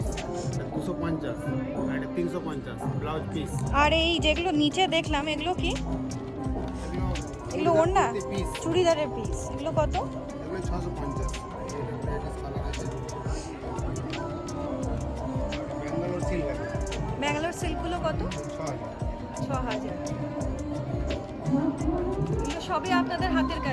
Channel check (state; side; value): identical; both; correlation 1.00